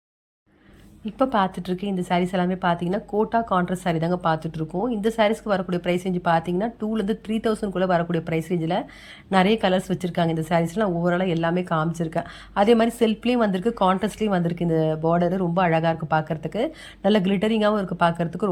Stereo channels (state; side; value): identical; both; correlation 1.00